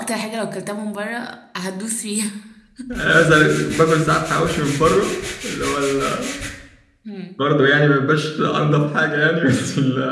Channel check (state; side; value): identical; both; correlation 1.00